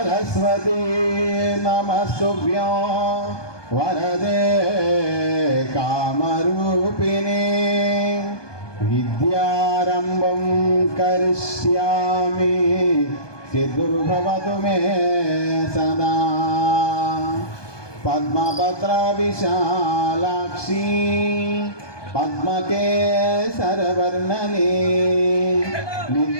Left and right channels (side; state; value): right; late; 1.2 ms